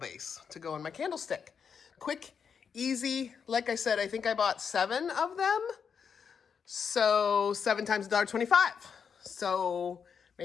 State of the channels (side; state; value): right; quieter; 6.7 dB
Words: to go in my candlestick. quick, easy. Like I said, I think I bought 7 of them. So 7 times $1.25. So